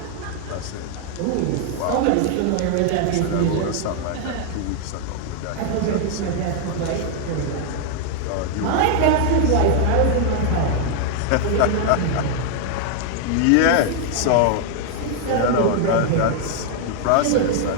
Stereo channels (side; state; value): both; different; correlation 0.00